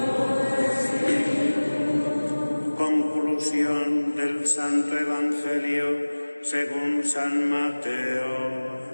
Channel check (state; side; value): inverted; both; correlation -1.00